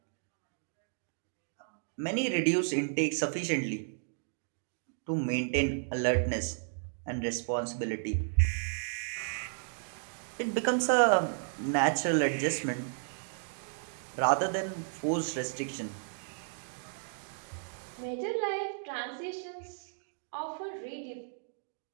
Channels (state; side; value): silent; left; digital silence